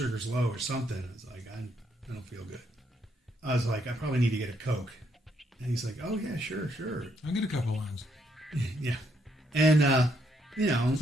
low or something. I was like, I don't feel good. I was like, I probably need to get a Coke. And he's like, oh, yeah, sure. I'll get a couple of lines. Yeah. And, It's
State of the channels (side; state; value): both; normal; correlation 0.74